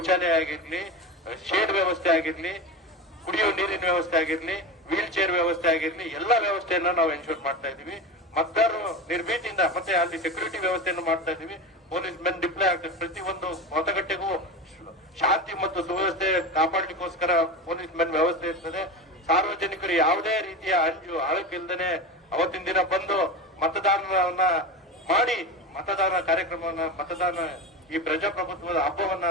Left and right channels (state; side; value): normal; both; correlation 0.24